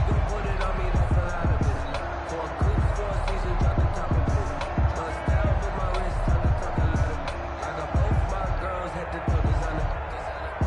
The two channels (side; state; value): both; identical; correlation 1.00